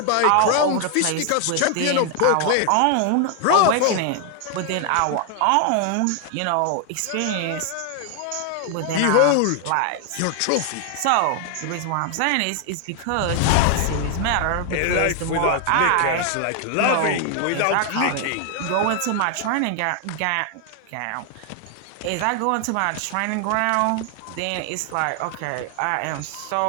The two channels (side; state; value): both; different; correlation 0.00